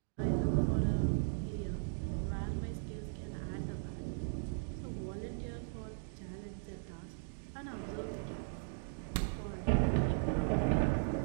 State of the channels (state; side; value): silent; left; digital silence